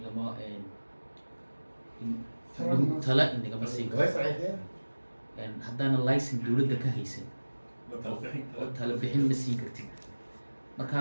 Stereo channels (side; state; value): both; inverted; correlation -1.00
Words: tala inagama siin karo haddaana licen dowladda ka haysan tala bixin ma siin kartid marka